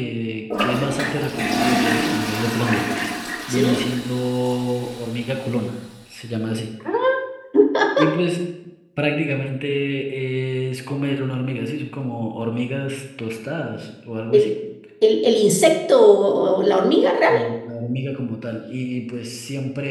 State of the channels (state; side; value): identical; both; correlation 1.00